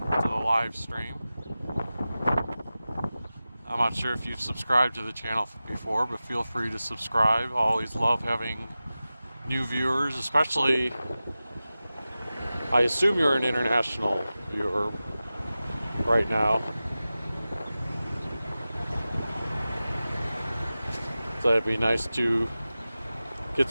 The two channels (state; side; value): inverted; both; correlation -0.95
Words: the live stream. I'm not sure if you've subscribed to the channel before, but feel free to subscribe. I always love having new viewers, especially, I assume you're an international viewer right now. So it'd be nice to get